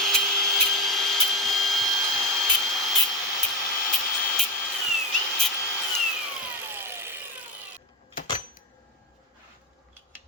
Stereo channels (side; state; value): both; normal; correlation 0.15